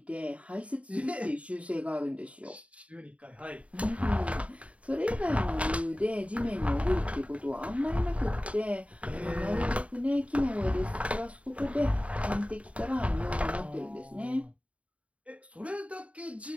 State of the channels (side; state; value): left; late; 0.065 ms